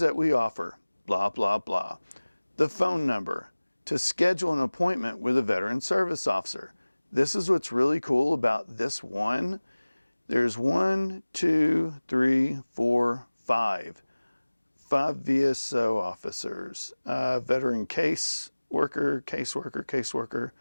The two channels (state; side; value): inverted; both; correlation -1.00